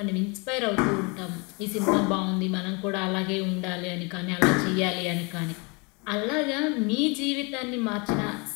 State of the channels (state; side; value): quieter; right; 30.5 dB